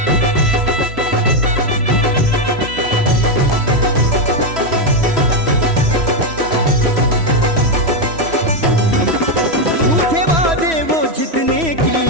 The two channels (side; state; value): left; late; 3.1 ms